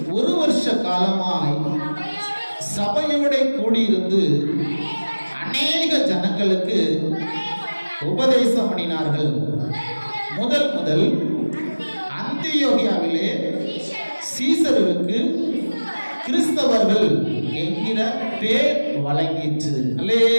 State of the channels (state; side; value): inverted; both; correlation -1.00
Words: ஒரு வருஷ காலமாய் சபையோட கூடியிருந்து அநேக ஜனங்களுக்கு உபதேசம் பண்ணினார்கள். முதல் அந்தியோகியாவிலே சீசருக்கு கிறிஸ்தவர்கள் என்கிற பேர் வழங்கிற்று.